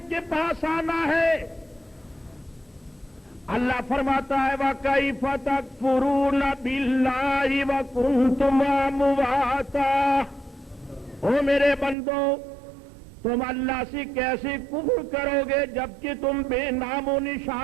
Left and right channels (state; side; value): drops out; left; at 12.0 s